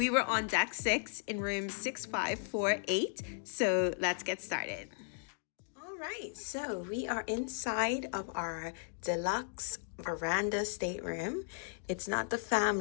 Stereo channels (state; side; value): silent; right; digital silence